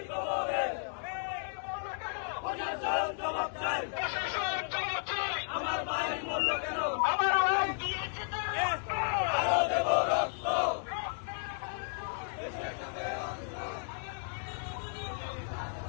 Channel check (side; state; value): right; silent; digital silence